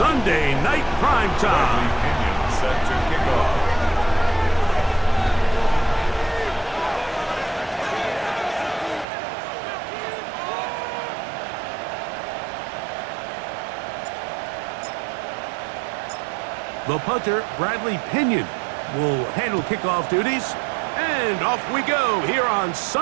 Night Primetime. Set to kick off. The punter, Bradley Pinion, will handle kickoff duties. And off we go here on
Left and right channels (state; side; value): drops out; left; at 9.1 s